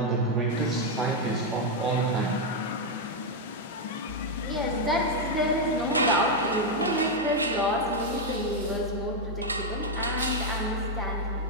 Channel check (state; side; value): normal; both; correlation 0.01